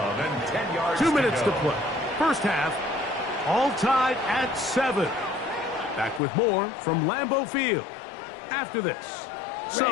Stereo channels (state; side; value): drops out; right; at 6.2 s